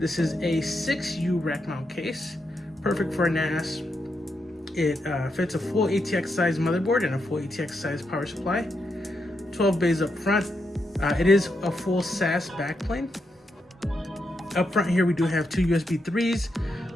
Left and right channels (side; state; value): both; normal; correlation 0.83